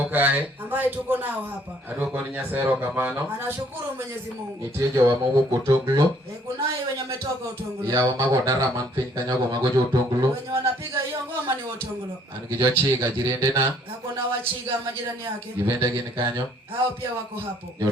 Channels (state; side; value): normal; both; correlation 0.62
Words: kae ambaye tuko nao hapa adwoko ni Nyasaye erokamano anashukuru Mwenyezi Mungu nitie jowa mowuok Otonglo kunaye wenye wametoka Otonglo yawa mago dara man piny kanyogo mago jo Otonglo wenye wanapiga hiyo ngoma ni Otonglo an gi jochiga jirendena hakuna wachiga majirani yake gibende gin kanyo hao pia wako hapo